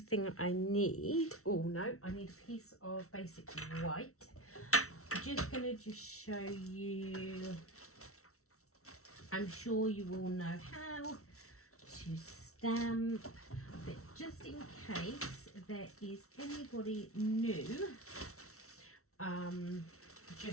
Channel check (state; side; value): late; right; 0.63 ms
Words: I need. Oh no, I need a piece of basic white. I'm just going to show you. I'm sure you all know how to stamp, but just in case there is anybody new